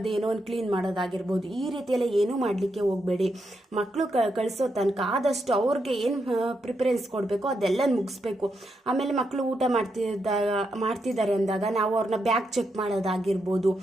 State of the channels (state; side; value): normal; both; correlation 0.83